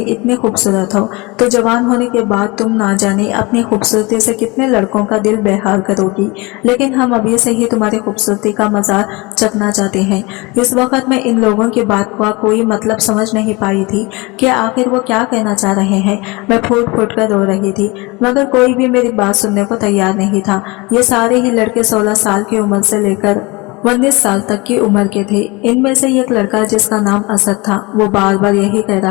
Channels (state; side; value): quieter; right; 25.0 dB